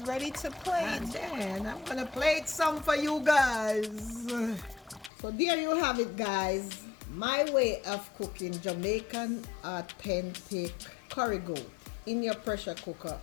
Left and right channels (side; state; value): right; drops out; at 5.1 s